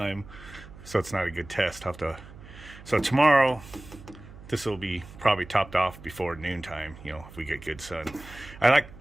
So it's not a good test. So tomorrow, this will be probably topped off before noontime, you know, if we get good sun. I like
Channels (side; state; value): right; noise; hum, 18 dB below the sound